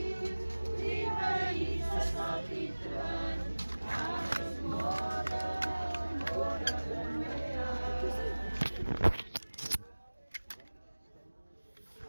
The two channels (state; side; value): inverted; both; correlation -1.00